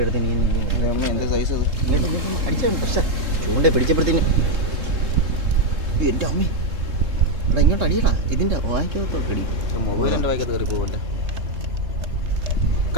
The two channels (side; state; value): left; late; 3.3 ms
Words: എടുത്ത് നീ അമ്മ എന്താ സൈസ് അത്? അടിച്ചാണ്. പക്ഷേ ചൂണ്ട പിടിച്ചപ്പോഴത്തേന് എൻ്റെ അമ്മേ എടാ ഇങ്ങോട്ട് അടിയടാ, ഇതിൻ്റെ വായിക്കകത്തോട്ടടി. മൊബൈലിൻ്റെ വായിക്കകത്ത് കയറി പോകല്ലേ.